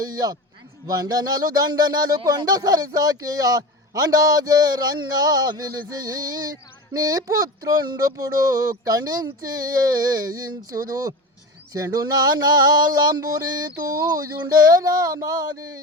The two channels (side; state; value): both; normal; correlation 0.28